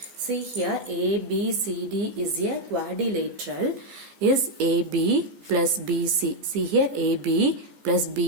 See here, ABCD is a quadrilateral. Is AB plus BC. See here, AB plus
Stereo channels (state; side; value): late; left; 15 ms